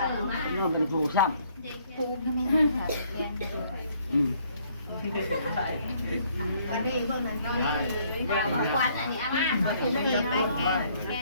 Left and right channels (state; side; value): inverted; both; correlation -0.64